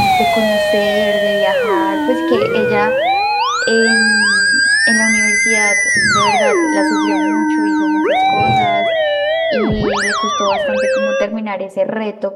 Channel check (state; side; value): identical; both; correlation 1.00